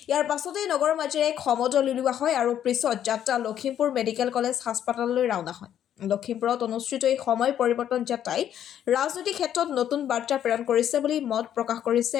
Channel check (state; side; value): quieter; right; 10.3 dB